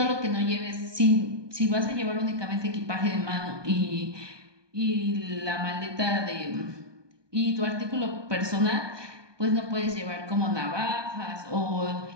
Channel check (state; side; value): late; left; 1.2 ms